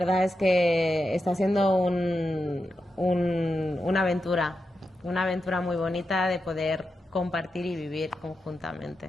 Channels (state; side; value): normal; both; correlation 0.88